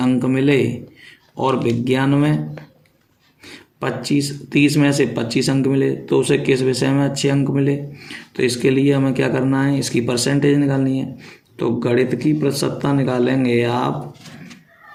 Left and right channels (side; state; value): both; identical; correlation 1.00